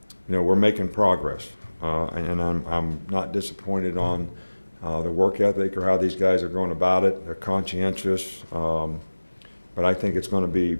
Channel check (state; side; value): inverted; both; correlation -1.00